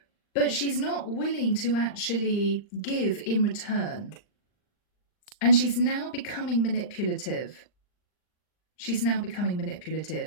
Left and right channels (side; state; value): right; late; 39 ms